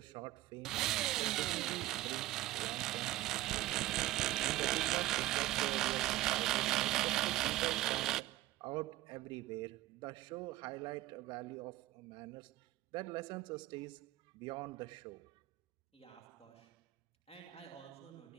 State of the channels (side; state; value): left; quieter; 16.4 dB